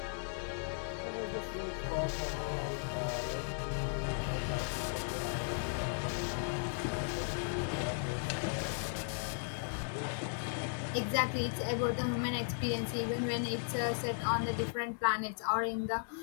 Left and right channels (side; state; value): right; silent; 54 dB below the other